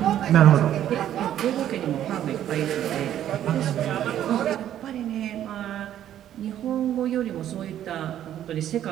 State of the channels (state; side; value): quieter; left; 11.2 dB